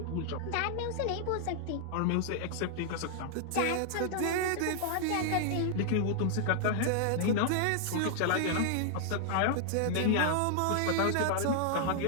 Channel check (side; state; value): both; different; correlation -0.01